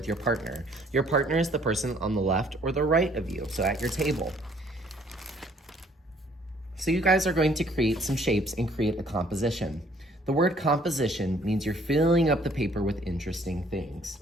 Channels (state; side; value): normal; both; correlation 0.61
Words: your partner. Your partner is the person on the left or the right of you, so at your table. So you guys are going to create some shapes and create a composition. The word composition means you're filling up the paper with interesting things.